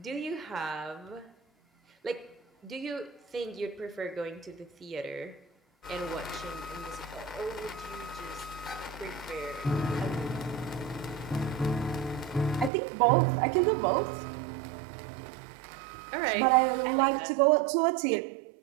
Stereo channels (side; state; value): left; drops out; at 12.7 s